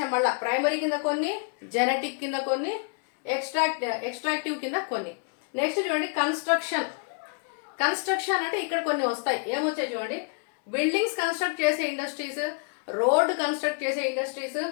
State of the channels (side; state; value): right; quieter; 39.7 dB